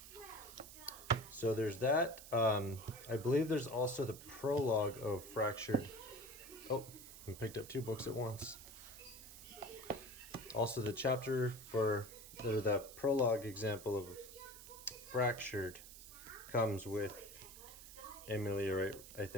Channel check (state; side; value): noise; right; hiss, 15 dB below the sound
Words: So there's that. I believe there's also the prologue of Fractured. Oh, I picked up two books at once. Also the chapter for, or the prologue example of Fractured comes with Ameliorite, I